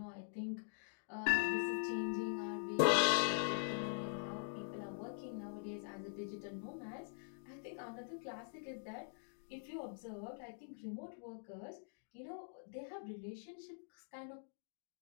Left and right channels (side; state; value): right; silent; digital silence